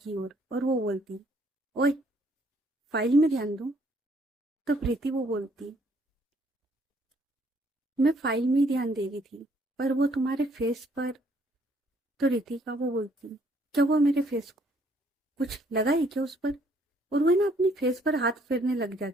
ओर और वो बोलती ओए फाइल में ध्यान दो। तो प्रीति वो बोलती मैं फाइल में ही ध्यान दे रही थी, पर वो तुम्हारे फेस पर। तो रितिका वो बोलती क्या हुआ मेरे फेस को, कुछ लगा है क्या उस पर? और वो ना अपनी फेस पर हाथ फेरने लग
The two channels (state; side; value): normal; both; correlation 0.65